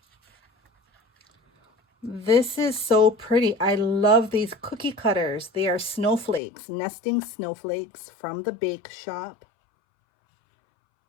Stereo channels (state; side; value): drops out; right; at 6.4 s